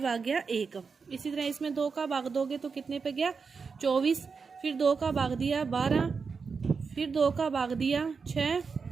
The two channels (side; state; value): left; quieter; 5.2 dB